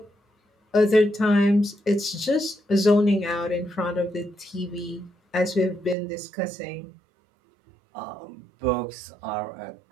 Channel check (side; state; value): left; drops out; at 6.0 s